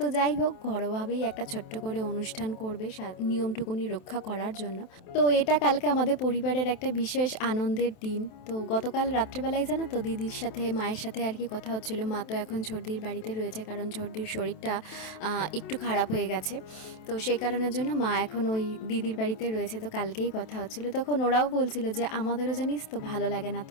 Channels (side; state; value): right; late; 28 ms